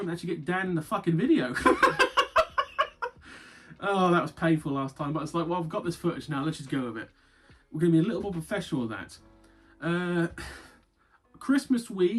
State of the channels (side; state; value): both; identical; correlation 1.00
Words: to actually get Dan in the fucking video. Oh, that was painful last time, but it's like, well, I've got this footage now, let's just go with it. We're going to be a little more professional with that. Christmas